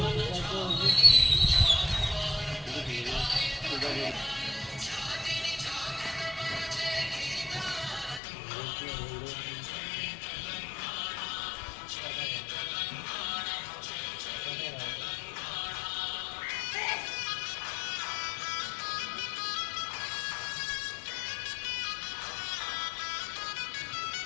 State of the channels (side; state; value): right; drops out; at 8.2 s